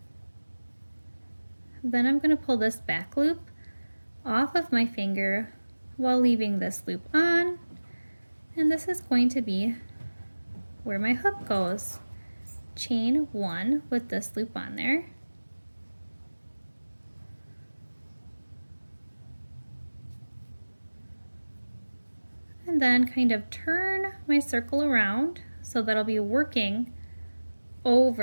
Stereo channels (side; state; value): both; inverted; correlation -1.00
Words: Then I'm going to pull this back loop off of my finger while leaving this loop on. And this is going to be where my hook goes. Chain 1 with this loop on there. And then kind of turn my circle around so that I'll be working